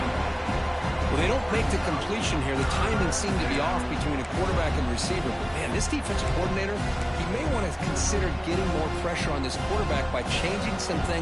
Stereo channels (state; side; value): identical; both; correlation 1.00